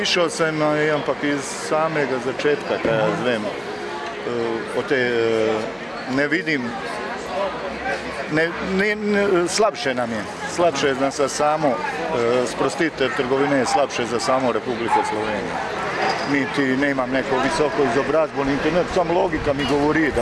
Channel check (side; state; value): both; identical; correlation 1.00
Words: sem, ampak iz samega začetka, kaj jaz vem, o tej ne vidim. Slabše nam je. Slabše je za samo sprostitev trgovine, je slabše za samo Republiko Slovenijo. Niti ne imam neko visoko izobrazbo, niti ne, samo logika mi govori,